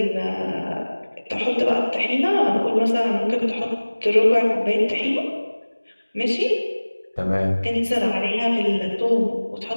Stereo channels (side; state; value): both; inverted; correlation -1.00